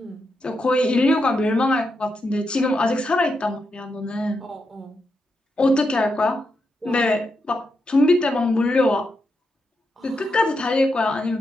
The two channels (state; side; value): normal; both; correlation 0.85